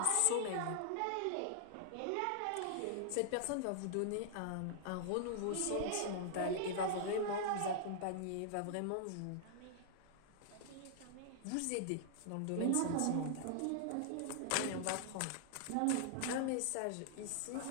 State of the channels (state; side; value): different; both; correlation -0.01